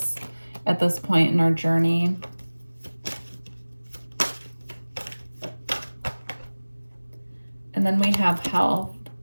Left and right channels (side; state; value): both; inverted; correlation -1.00